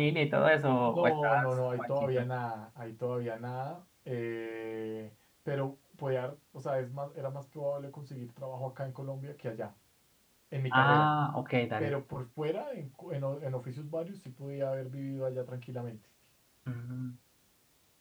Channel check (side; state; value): both; identical; correlation 1.00